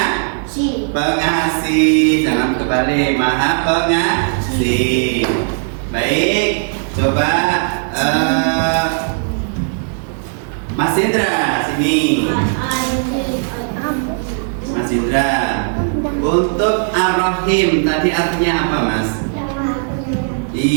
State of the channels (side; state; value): left; silent; 67 dB below the other